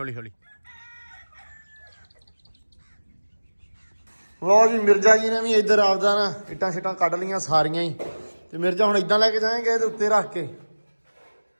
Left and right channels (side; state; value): both; inverted; correlation -1.00